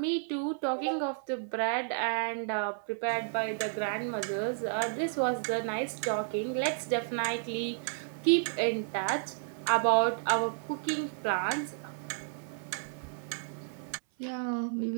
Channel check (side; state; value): left; silent; 56 dB below the other